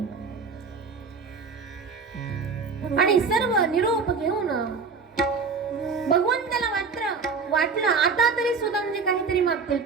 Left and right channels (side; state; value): left; quieter; 5.0 dB